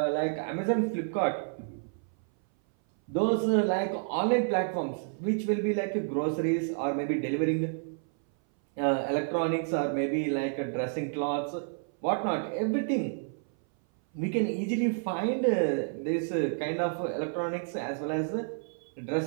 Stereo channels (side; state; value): left; silent; 58 dB below the other